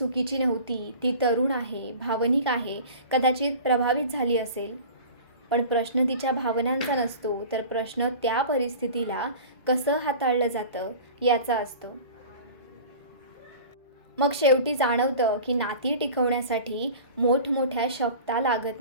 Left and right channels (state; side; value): inverted; both; correlation -0.39